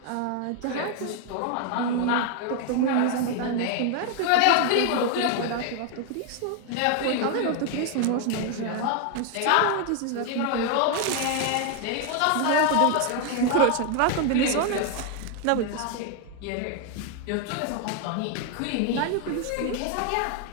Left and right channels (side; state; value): both; different; correlation 0.01